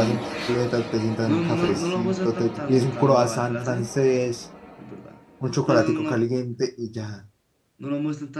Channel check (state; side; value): identical; both; correlation 1.00